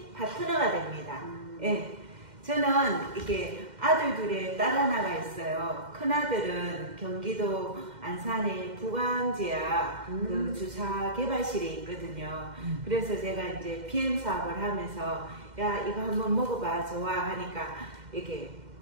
파트너가 됩니다. 예. 저는 이게 아들 둘에 딸 하나가 있어요. 큰아들은 경기도 안산의 부광지야 그 주사 개발실에 있거든요. 그래서 제가 이제 PM 사업을 하면서 야 이거 한번 먹어봐 좋아 하니까 이게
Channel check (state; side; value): late; left; 2.1 ms